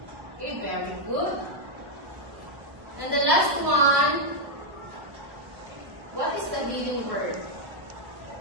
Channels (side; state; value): left; late; 1.1 ms